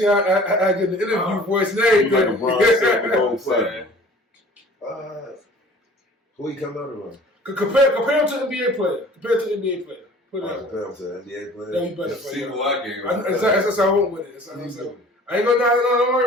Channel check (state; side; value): normal; both; correlation 0.48